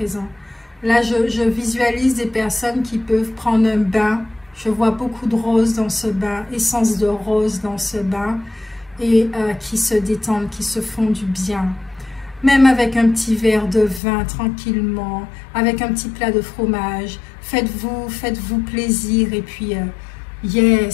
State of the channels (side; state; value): right; drops out; at 14.0 s